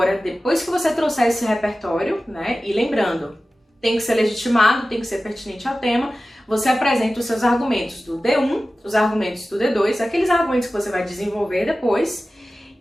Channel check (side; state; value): both; normal; correlation 0.95